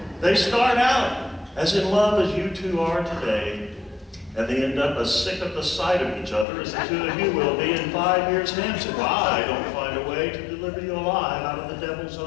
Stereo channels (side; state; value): right; drops out; at 6.5 s